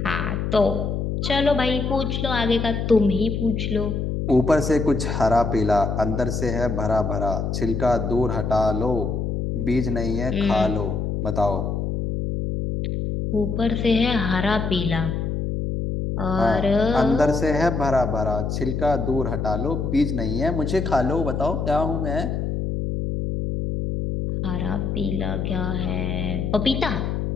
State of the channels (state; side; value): noise; left; hum, 2 dB below the sound